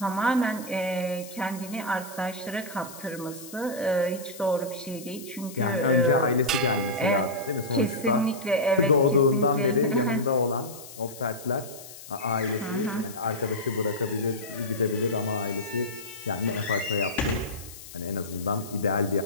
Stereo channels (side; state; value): left; noise; hiss, 15 dB below the sound